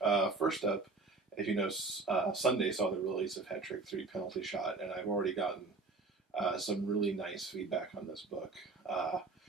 First up, as you know, Sunday saw the release of Hat Trick 3 Penalty Shot, and I've already gotten some really nice feedback on this book.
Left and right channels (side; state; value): left; quieter; 3.8 dB